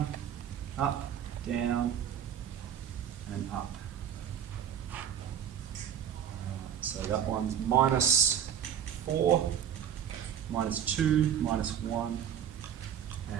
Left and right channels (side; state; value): left; quieter; 9.1 dB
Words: up, down, and up. Alright, so that one's minus 4, minus 2, minus 1,